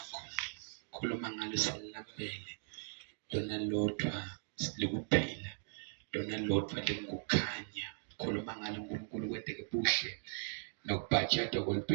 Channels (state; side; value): silent; left; digital silence